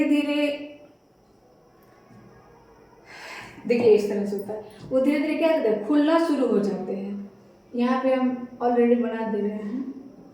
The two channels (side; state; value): both; identical; correlation 1.00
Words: धीरे, देखिए इस तरह से होता है, वो धीरे धीरे क्या करते हैं, खुलना शुरू हो जाते हैं। यहाँ पे हम ऑलरेडी बना दे रहे हैं।